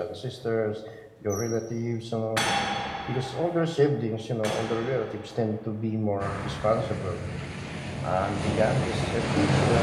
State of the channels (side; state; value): both; identical; correlation 1.00